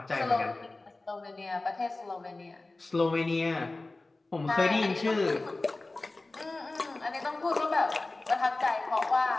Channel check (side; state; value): right; quieter; 3.1 dB